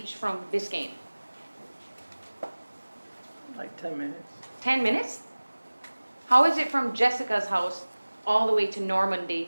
from Biscayne? Like 10 minutes. 10 minutes? How is it from Jessica's house all the way to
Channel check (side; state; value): both; inverted; correlation -1.00